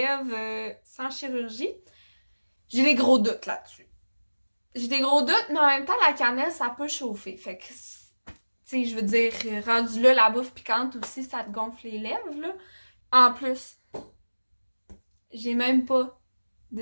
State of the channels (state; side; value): inverted; both; correlation -1.00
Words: sans chirurgie. J'ai des gros doutes là-dessus. J'ai des gros doutes, mais en même temps, la cannelle, ça peut chauffer. Fait que, tu sais, je veux dire, rendu là, la bouffe piquante aussi, ça te gonfle les lèvres, là. En plus, j'ai même pas